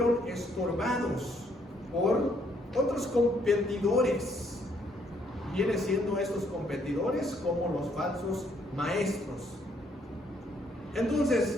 estorbados por otros competidores. Viene siendo estos competidores como los falsos maestros.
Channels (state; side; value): normal; both; correlation 0.69